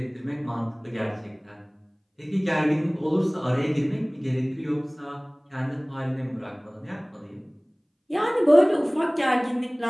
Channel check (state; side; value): identical; both; correlation 1.00